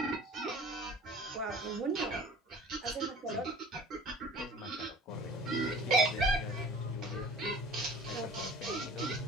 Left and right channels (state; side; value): normal; both; correlation 0.45